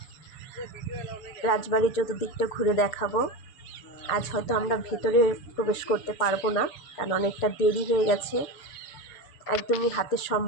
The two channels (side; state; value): right; late; 6.9 ms